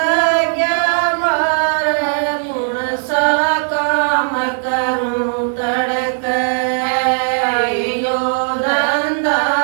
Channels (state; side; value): silent; left; digital silence